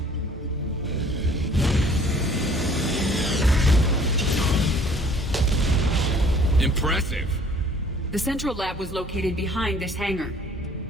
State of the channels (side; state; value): both; normal; correlation 0.54